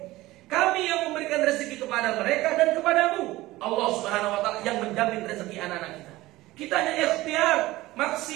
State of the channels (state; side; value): quieter; left; 18.0 dB